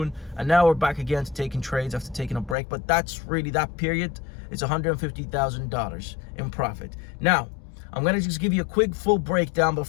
And now we're back again to taking trades after taking a break. But that's really that period. It's $150,000 in profit. Now, I'm going to just give you a quick full breakdown, but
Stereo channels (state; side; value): drops out; right; at 2.6 s